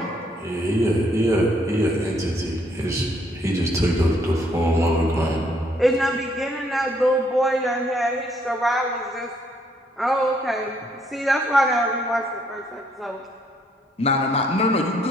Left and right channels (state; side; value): normal; both; correlation 0.69